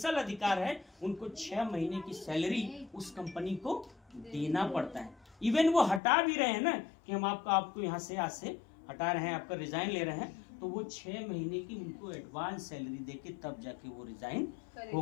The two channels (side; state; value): right; drops out; at 6.0 s